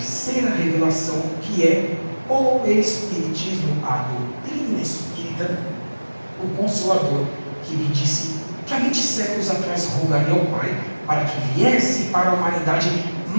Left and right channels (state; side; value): inverted; both; correlation -1.00